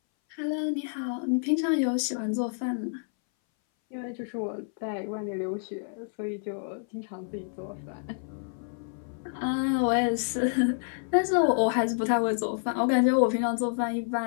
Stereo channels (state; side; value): silent; right; 59 dB below the other